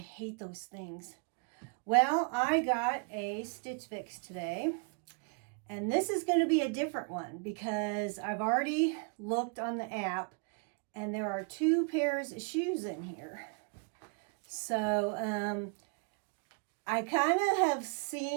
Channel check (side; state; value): left; quieter; 36.4 dB